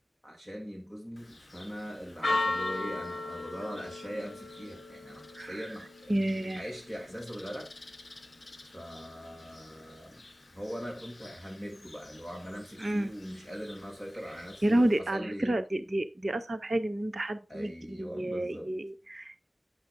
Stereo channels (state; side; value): normal; both; correlation 0.96